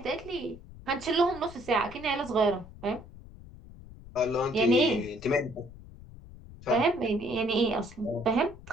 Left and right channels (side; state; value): left; noise; rumble, 18 dB below the sound